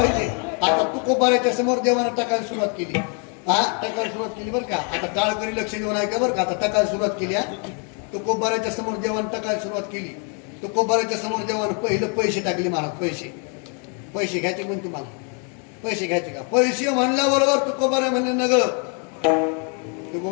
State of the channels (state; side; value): quieter; right; 39.3 dB